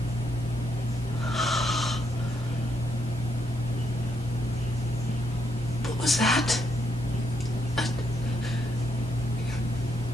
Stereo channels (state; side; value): normal; both; correlation 0.77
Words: What was that?